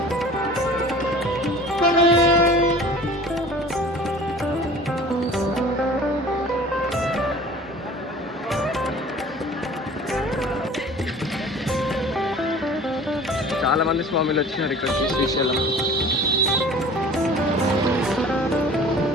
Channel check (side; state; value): both; normal; correlation 0.45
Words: చాలా మంది స్వామిలు వచ్చినారు ఇక్కడికి శ్రీశైలం.